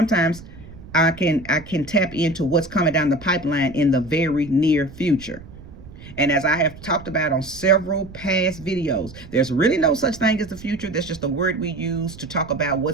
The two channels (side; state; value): right; noise; rumble, 17 dB below the sound